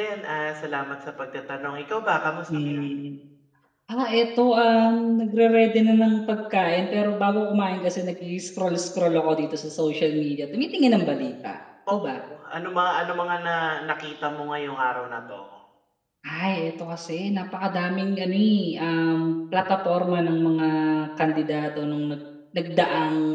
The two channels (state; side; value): identical; both; correlation 1.00